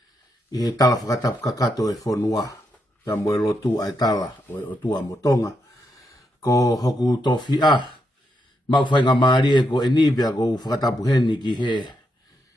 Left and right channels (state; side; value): normal; both; correlation 0.81